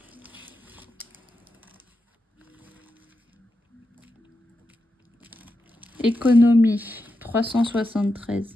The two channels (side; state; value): both; normal; correlation 0.88